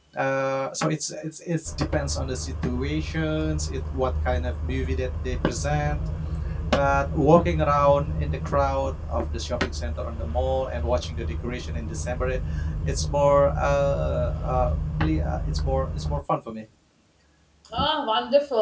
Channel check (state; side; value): identical; both; correlation 1.00